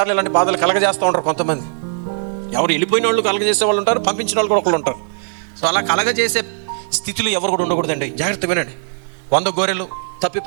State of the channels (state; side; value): silent; left; digital silence